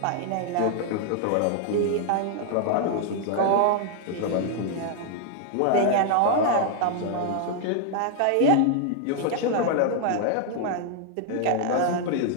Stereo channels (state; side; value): different; both; correlation 0.00